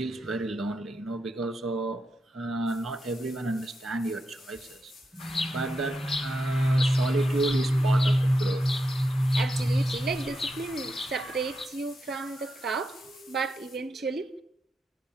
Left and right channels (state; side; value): normal; both; correlation 0.85